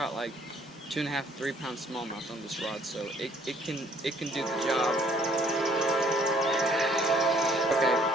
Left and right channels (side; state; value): both; normal; correlation 0.61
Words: like 2.5 to 3 pound smallmouth on this rod, so it can do the job. Okay,